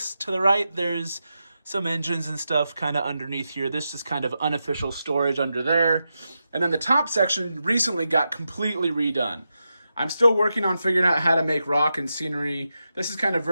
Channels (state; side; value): inverted; both; correlation -0.89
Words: to the right there's some engines and stuff kind of underneath here. This is kind of unofficial storage under there. And then the top section recently got completely redone. I'm still working on figuring out how to make rock and scenery. This is kind of